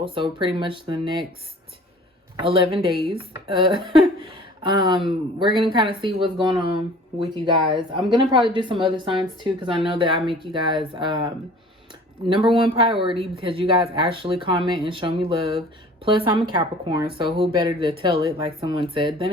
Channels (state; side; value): normal; both; correlation 0.47